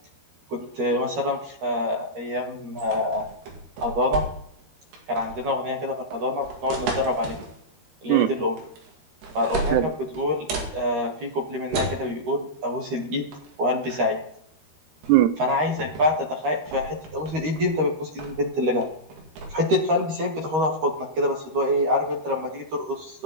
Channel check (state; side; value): late; left; 13 ms